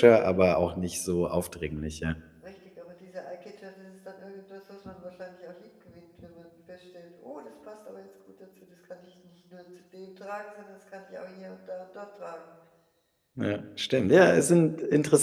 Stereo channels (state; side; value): identical; both; correlation 1.00